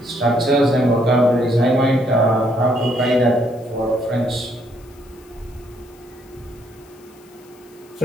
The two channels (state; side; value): noise; left; hiss, 28 dB below the sound